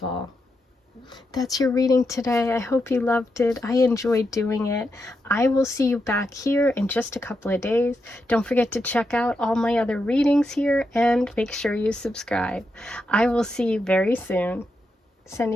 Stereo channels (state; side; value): normal; both; correlation 0.85